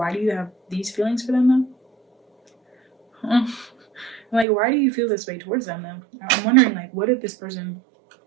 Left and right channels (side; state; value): left; drops out; at 4.5 s